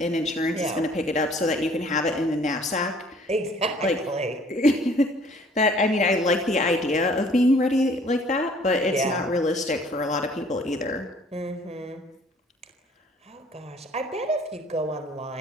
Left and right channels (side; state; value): both; normal; correlation 0.56